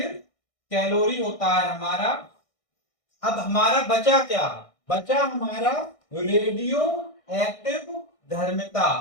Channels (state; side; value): late; right; 1.6 ms